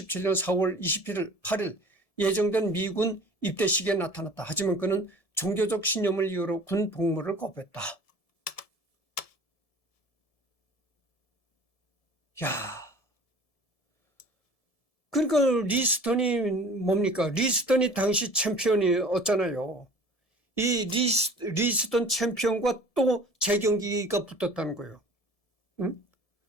4월 8일 예정된 미군 입대식에 나타났다. 하지만 그는 종교적 신념을 이유로 군 복무를 거부했다. 그러니까 리스턴이 뭡니까? 리스턴이 당시 챔피언이었잖아요. 이 리스턴 챔피언과 또 재경기가 붙었다는 거예요. 응?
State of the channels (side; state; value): right; late; 1.7 ms